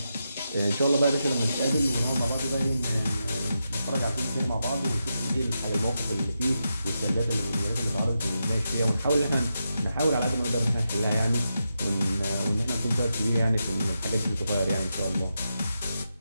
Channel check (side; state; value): both; inverted; correlation -0.87